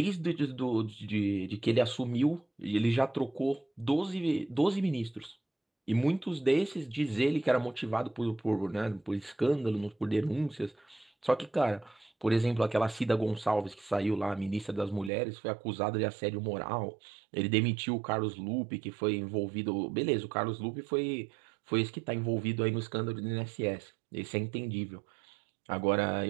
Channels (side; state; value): left; drops out; at 15.1 s